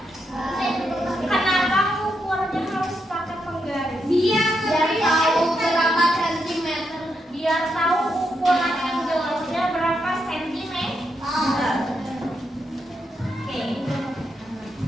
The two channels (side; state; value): both; normal; correlation 0.82